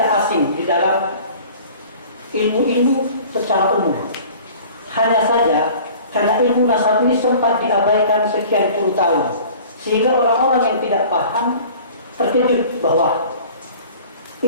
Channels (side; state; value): both; inverted; correlation -0.46